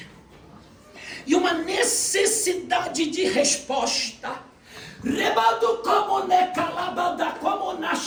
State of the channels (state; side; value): identical; both; correlation 1.00